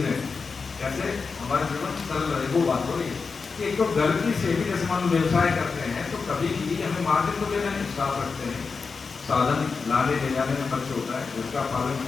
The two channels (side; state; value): right; quieter; 4.9 dB